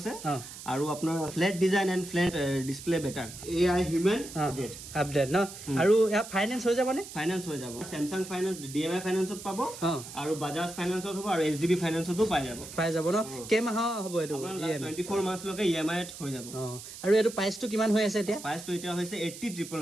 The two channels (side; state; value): right; noise; hiss, 13 dB below the sound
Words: আৰু আপোনাৰ flat design and flat display better AI human update no আৰু ইয়া ফাইনান্স হৈ যাবনে ফাইনান্স হৈ যাব Samsung finance DMI finance পাব আৰু Bajaj finance হ'ব আৰু HDB finance তো পাই যাব ন কেমাহ হ'ব এটো 24 মাস লকে EMI হৈ যাব আৰু এটো প্ৰাইসটো কিমান হৈ আছে এতিয়া প্ৰাইসটো এতিয়া হৈছে